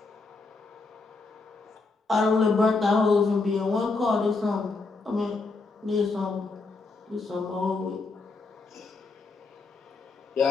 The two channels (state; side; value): quieter; right; 3.9 dB